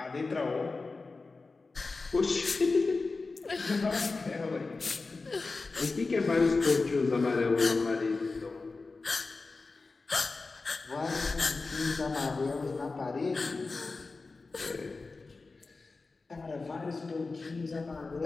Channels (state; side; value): quieter; right; 3.9 dB